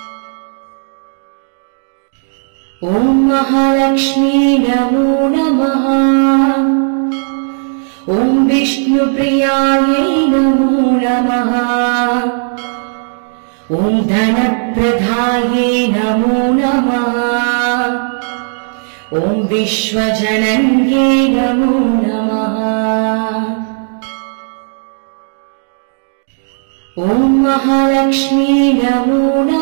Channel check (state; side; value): silent; left; 58 dB below the other